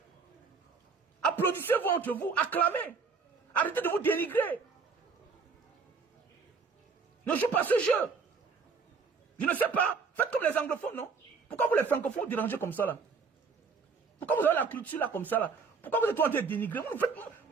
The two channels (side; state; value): left; quieter; 5.0 dB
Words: Applaudissez-vous entre vous, acclamez. Arrêtez de vous dénigrer. Ne jouez pas ce jeu. Je ne sais pas. Faites comme les anglophones, non? Pourquoi vous les francophones dérangez comme ça là? Pourquoi vous avez la culture là comme ça là? Pourquoi vous êtes en train de dénigrer? Vous